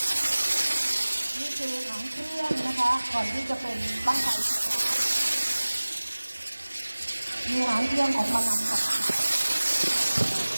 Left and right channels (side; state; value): both; inverted; correlation -1.00